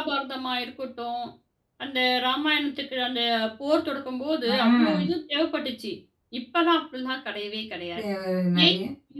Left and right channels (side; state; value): both; identical; correlation 1.00